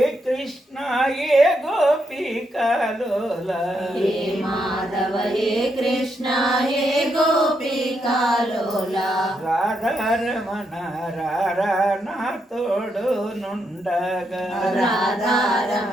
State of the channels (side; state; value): both; normal; correlation 0.80